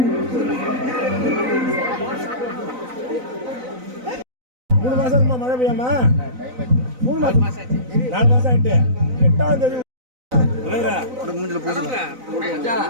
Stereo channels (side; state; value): left; late; 4.0 ms